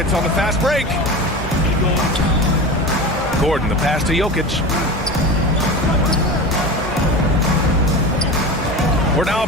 on the fast break. Gordon, the pass to Jokic. We're now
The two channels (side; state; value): both; normal; correlation 0.29